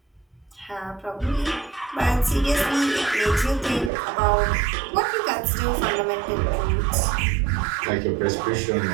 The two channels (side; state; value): left; drops out; at 3.9 s